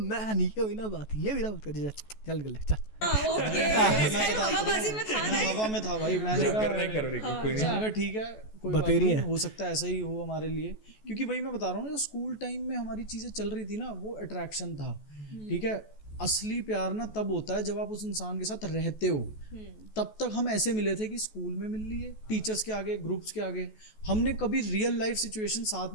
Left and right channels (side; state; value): right; late; 14 ms